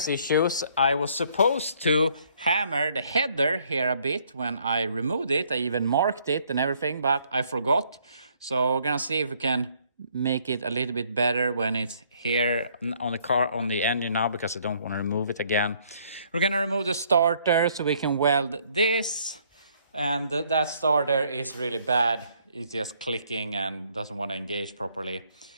issues, I was supposed to hammer the header here a bit when I removed it. I even marked it and everything, but I forgot. So we're gonna see if we can make it a little bit better when it's here on the car, on the engine now, because I don't want to remove it again. We're gonna remove the starter so we can weld this, and that starter is really bad. It's just clicking and doesn't want to engage properly.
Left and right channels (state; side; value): inverted; both; correlation -0.65